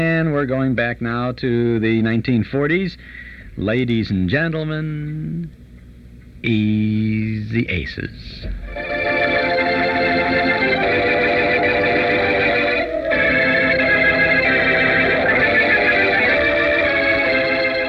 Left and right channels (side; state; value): both; identical; correlation 1.00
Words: we're going back now to the 1940s. Ladies and gentlemen, Easy Aces.